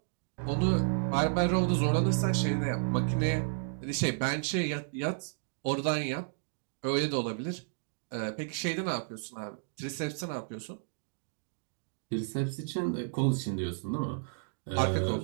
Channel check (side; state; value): left; silent; digital silence